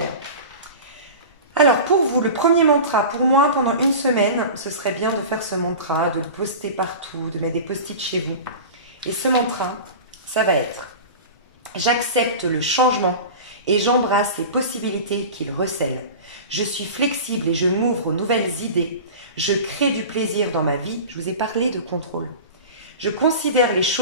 Alors, pour vous, le premier mantra, pour moi, pendant une semaine, ce serait bien de faire ce mantra, de le poster partout, de mettre des post-it chez vous. Et ce mantra, ça va être « J'accepte le changement et j'embrasse les possibilités qu'il recèle. Je suis flexible et je m'ouvre aux nouvelles idées. Je crée du plaisir dans ma vie. Je vous ai parlé de contrôle. Je considère les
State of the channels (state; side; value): inverted; both; correlation -0.33